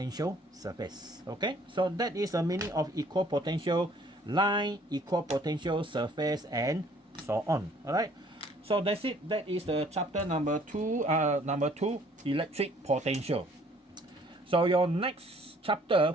surface. Okay, so that is the meaning of equal potential line, equal potential surface, and so on. All right, so that's it. That is the chapter number 2, electric potential. So your next chapter,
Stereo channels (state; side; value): normal; both; correlation 0.59